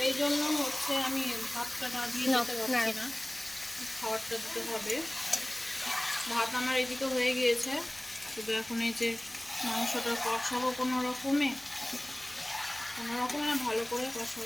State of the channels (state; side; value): noise; left; hum, 30 dB below the sound